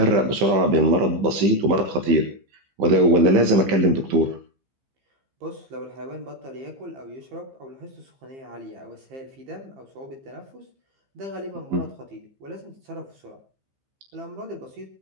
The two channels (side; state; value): left; late; 15 ms